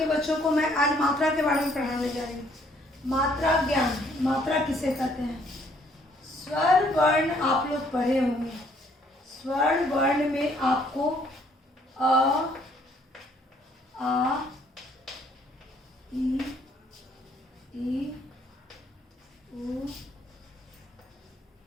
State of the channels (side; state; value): both; normal; correlation 0.65